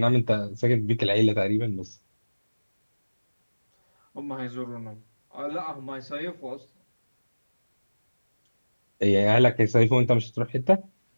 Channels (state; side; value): inverted; both; correlation -1.00